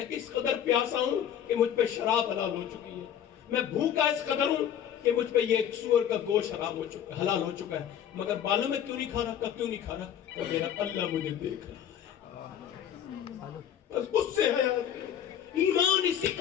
اس قدر پیاسا ہوں کہ مجھ پہ شراب حلال ہو چکی ہے, میں بھوکا اس قدر ہوں کہ مجھ پہ یہ سور کا گوشت حلال ہو چکا ہے, مگر معلوم میں کیوں نہیں کھا رہا, کیوں نہیں کھا رہا, کہ میرا اللہ مجھے دیکھ رہا ہے. بس اس سے ہے ایمان اسی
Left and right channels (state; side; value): quieter; right; 9.6 dB